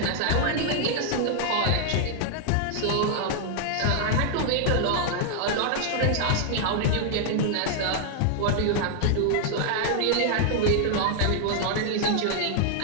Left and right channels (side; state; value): both; different; correlation -0.01